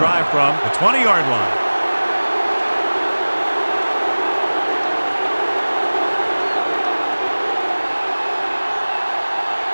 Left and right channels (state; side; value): inverted; both; correlation -1.00